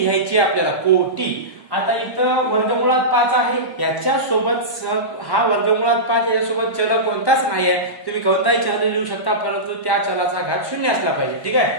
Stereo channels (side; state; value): right; late; 1.0 ms